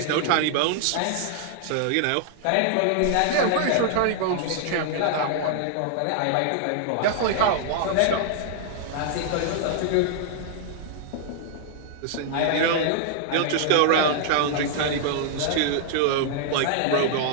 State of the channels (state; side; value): different; both; correlation -0.01